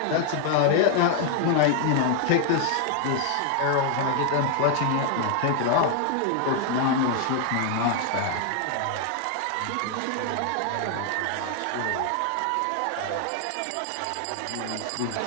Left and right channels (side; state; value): both; different; correlation 0.00